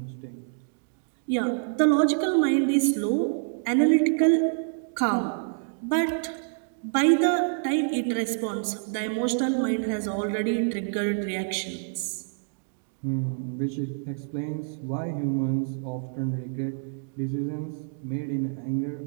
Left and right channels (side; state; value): left; silent; digital silence